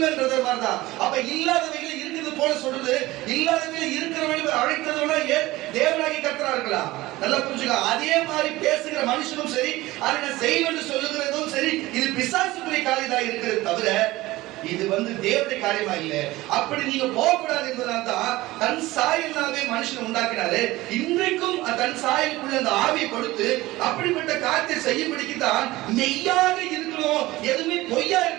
மாதிரிதான். அப்ப இல்லாதவைகள் இருக்குது போல சொல்றது, இல்லாதவைகள் இருக்கிறவர்கள் அழைத்ததோட தேவனாகி கர்த்தரா இருக்கலாம். நல்லா புரிஞ்சுக்க. அதே மாதிரி பேசுகிற மனுஷனும் சரி, அதை நான் செய்வேன் சொல்லுகிறதும் சரி, இது பிசாசுக்குரிய காரியமாக இருக்கிறது தவிர இது தேவனுடைய காரியமா இல்ல. அப்படி நீங்க போகக்கூடாது என்பதனால தான் தன் சாயலாவே மனுஷன் உண்டாக்கினாரு. இன்றைக்கும் தன் சாயலுக்குள்ள அந்த ஆவியை கொடுத்து அப்படிப்பட்ட காரியத்தை செய்யும்படிக்கு தான் மெய்யாக இருக்கணும், எதுவுமே பொய்யா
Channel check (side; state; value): left; quieter; 18.5 dB